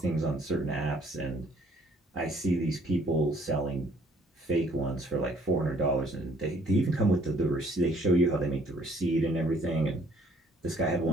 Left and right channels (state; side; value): normal; both; correlation 0.61